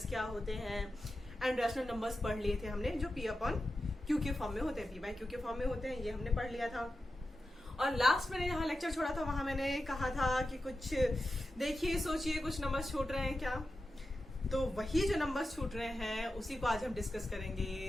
क्या होते हैं, एंड रैशनल नंबर्स पढ़ लिए थे हमने जो पी अपॉन क्यू के फॉर्म में होते हैं, पी बाई क्यू के फॉर्म में होते हैं, ये हमने पढ़ लिया था। और लास्ट मैंने यहाँ लेक्चर छोड़ा था, वहां मैंने कहा था कि कुछ देखिए सोचिए कुछ नंबर्स छूट रहे हैं क्या, तो वही जो नंबर्स छूट रहे हैं उसी को आज हम डिस्कस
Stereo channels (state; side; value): normal; both; correlation 0.91